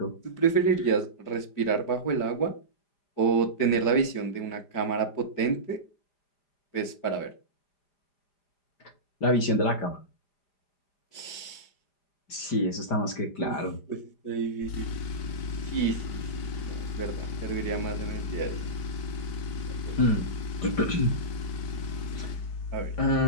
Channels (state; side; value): late; right; 5.0 ms